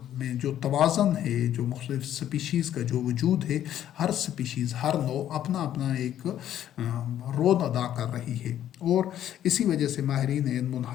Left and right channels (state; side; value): quieter; right; 11.3 dB